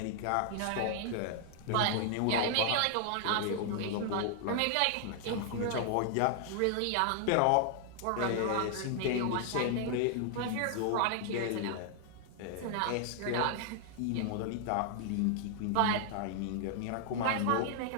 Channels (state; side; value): different; both; correlation -0.01